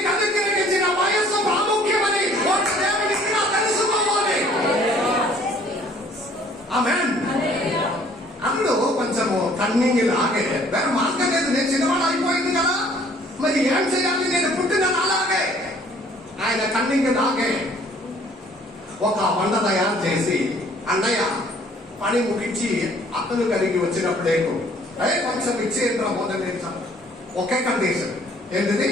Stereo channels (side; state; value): both; normal; correlation 0.58